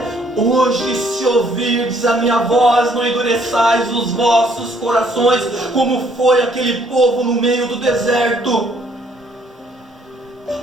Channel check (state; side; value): normal; both; correlation 0.65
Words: hoje, se ouvirdes a minha voz, não endureçais os vossos corações, como foi aquele povo no meio do deserto.